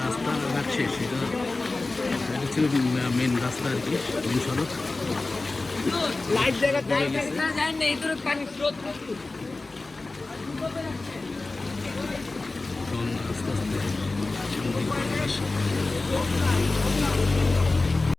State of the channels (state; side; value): quieter; right; 3.3 dB